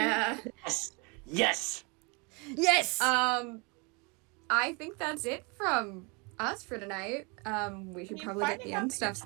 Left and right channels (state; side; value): quieter; left; 30.7 dB